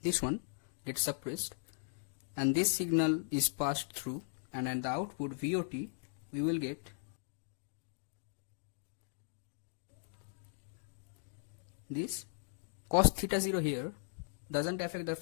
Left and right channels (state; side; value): silent; right; digital silence